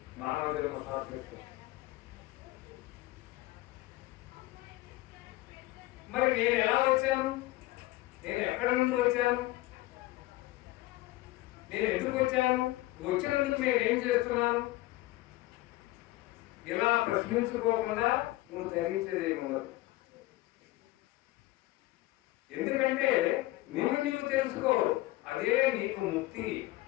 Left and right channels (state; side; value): quieter; right; 18.0 dB